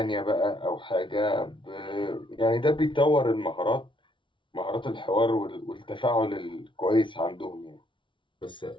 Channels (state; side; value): late; right; 0.24 ms